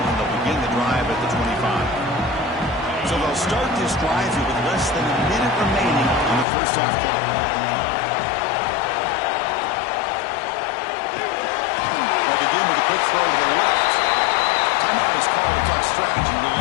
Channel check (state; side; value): drops out; right; at 6.5 s